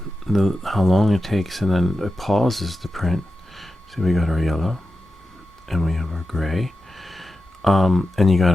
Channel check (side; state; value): both; normal; correlation 0.92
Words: How long it takes, and then it pauses the print. So we got our yellow, and we have our gray. And you